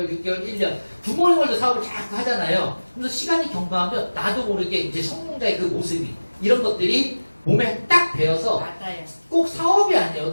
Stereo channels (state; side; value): inverted; both; correlation -1.00